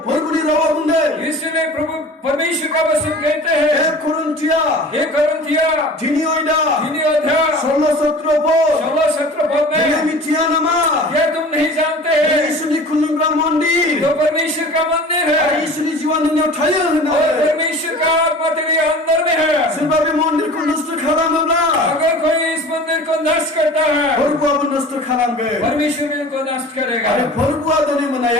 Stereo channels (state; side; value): normal; both; correlation 0.41